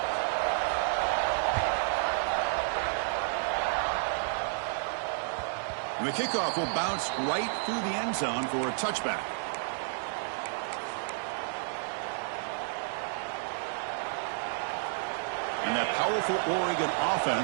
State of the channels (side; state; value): left; silent; digital silence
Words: And the kickoff will bounce right through the end zone for a touchback. And that powerful Oregon